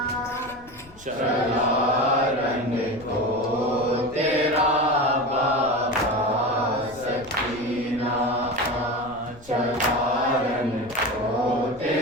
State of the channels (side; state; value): left; noise; rumble, 23 dB below the sound